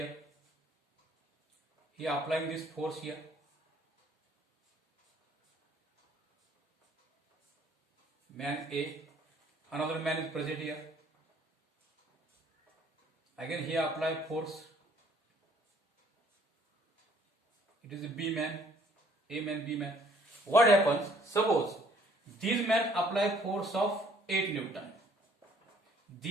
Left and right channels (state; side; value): normal; both; correlation 0.60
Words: He applying this force here. Man A, another man is present here. Again he apply force. It is a B man, A man, B man. What happens? Suppose these men apply force of 8 Newton.